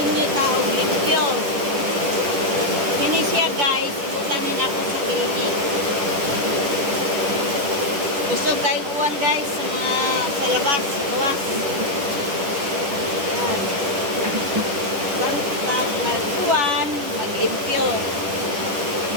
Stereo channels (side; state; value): left; late; 10 ms